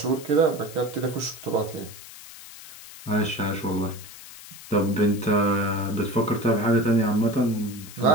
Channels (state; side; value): noise; left; hiss, 16 dB below the sound